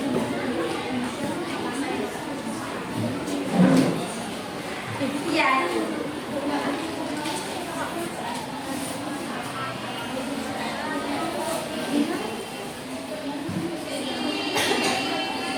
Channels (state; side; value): identical; both; correlation 1.00